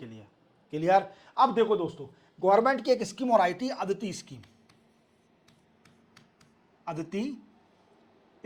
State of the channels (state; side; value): identical; both; correlation 1.00